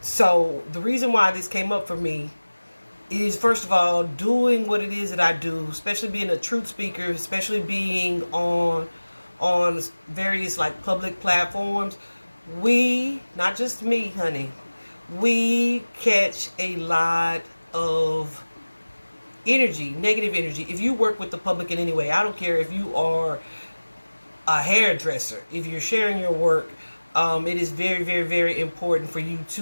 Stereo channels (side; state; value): both; inverted; correlation -1.00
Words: so the reason why this came up for me is, first of all, doing what it is that I do, especially being a truth speaker, especially being on various like public platforms. We, not just me, honey, we catch a lot of energy, negative energy. If you work with the public in any way, I don't care if you are a hairdresser, if you're sharing your work, it is very, very, very important for you